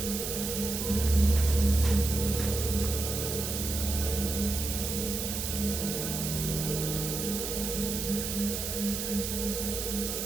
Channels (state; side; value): noise; right; hiss, 3 dB below the sound